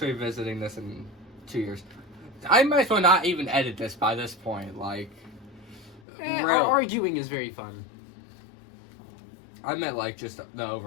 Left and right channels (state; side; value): drops out; right; at 6.0 s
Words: visiting this in 2 years. I might as well not even edit this by this point. Like... Arguing is very fun. I meant like just the